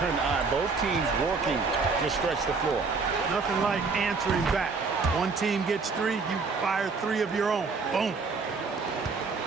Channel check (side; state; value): left; quieter; 4.5 dB